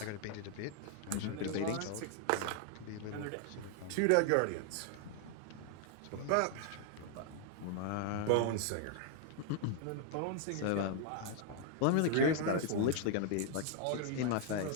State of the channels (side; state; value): both; different; correlation 0.00